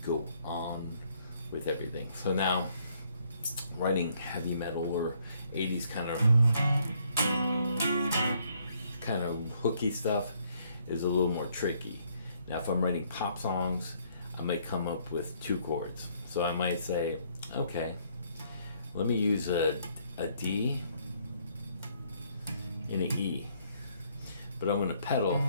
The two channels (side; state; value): both; inverted; correlation -0.68